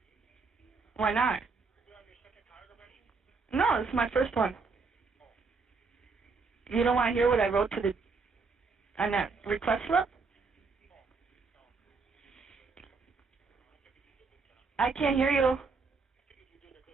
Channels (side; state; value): left; quieter; 4.5 dB